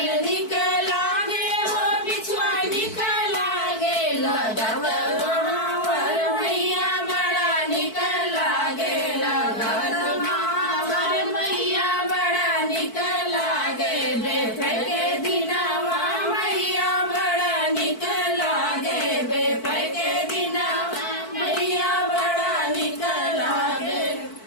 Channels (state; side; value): late; right; 4.5 ms